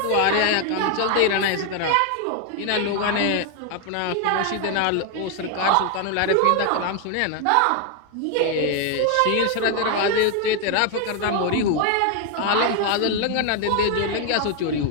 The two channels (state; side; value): different; both; correlation 0.01